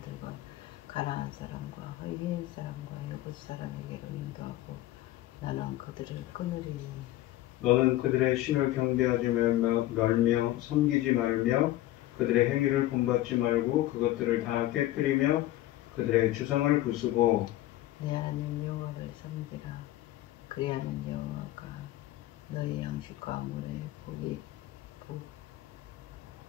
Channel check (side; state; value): right; quieter; 15.4 dB